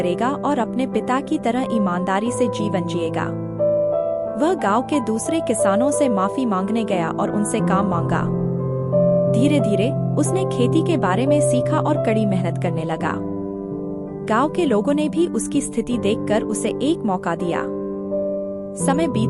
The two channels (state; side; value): identical; both; correlation 1.00